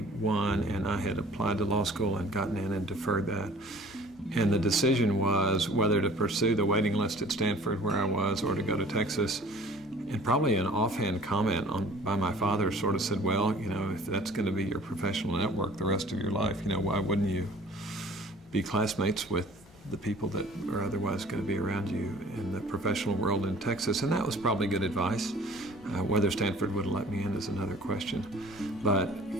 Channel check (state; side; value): normal; both; correlation 0.49